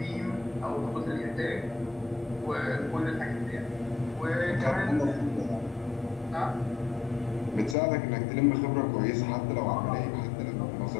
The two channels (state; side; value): drops out; right; at 7.8 s